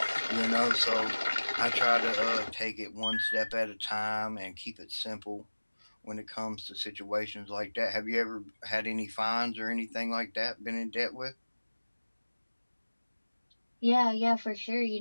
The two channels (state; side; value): inverted; both; correlation -1.00